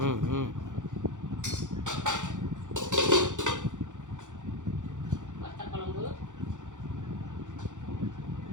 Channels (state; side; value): late; left; 0.86 ms